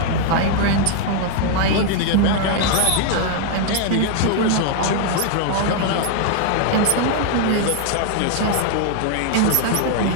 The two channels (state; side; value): different; both; correlation 0.00